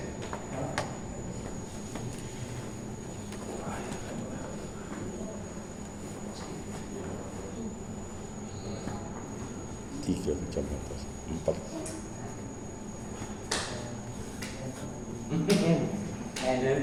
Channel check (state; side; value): identical; both; correlation 1.00